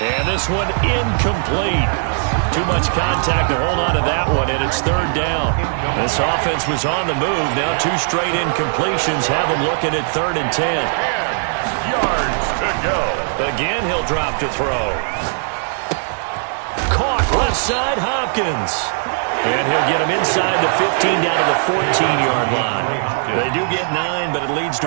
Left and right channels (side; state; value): left; silent; 67 dB below the other